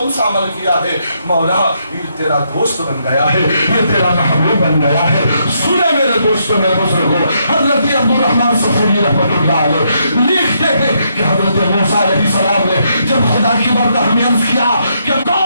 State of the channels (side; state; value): both; inverted; correlation -0.76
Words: سا عمل کیا ہے مولا؟ یہ تیرا دوست بن گیا ہے، یہ تیرا محبوب بن گیا ہے۔ سنے میرے دوستوں میرے بزرگوں، حضرت عبد الرحمن صفوری رحمۃ اللہ علیہ لکھتے ہیں کہ حضرت موسیٰ علیہ السلام نے جب خدا کی بارگاہ میں عرض کیا کہ